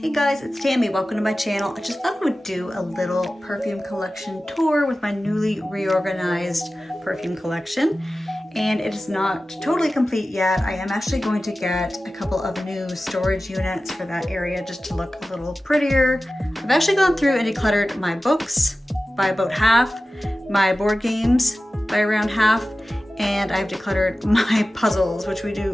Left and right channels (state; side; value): normal; both; correlation 0.95